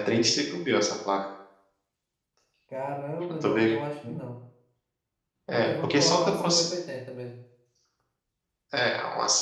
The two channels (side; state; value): both; identical; correlation 1.00